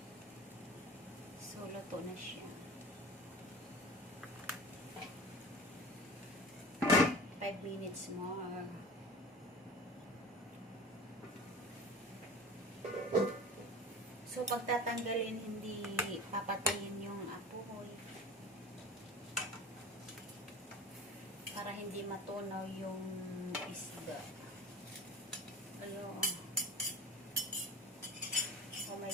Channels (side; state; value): both; normal; correlation 0.37